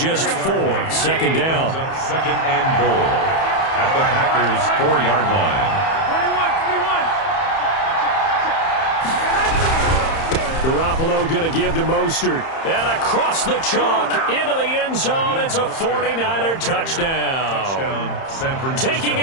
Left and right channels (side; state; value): right; late; 31 ms